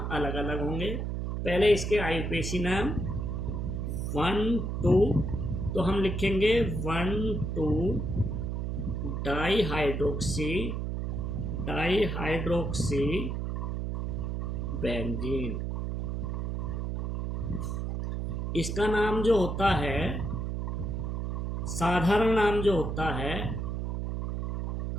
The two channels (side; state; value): right; noise; hum, 2 dB below the sound